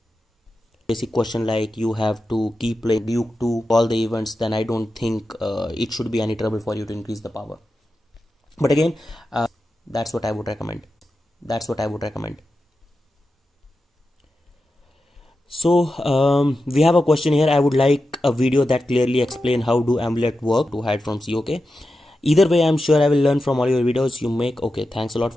Basic question like you have to keep playing Duke to all the events, then I don't think it should be any trouble for you to increase the power. But again, that's what I would recommend. So we have a question here. I would like a video that clearly explain how do amulet work to hide from COK. Either way, I'm sure I will learn from all your videos you make. Okay, thanks a lot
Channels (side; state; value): both; normal; correlation 0.91